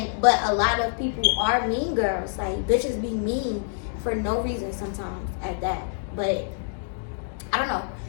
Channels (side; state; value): right; silent; digital silence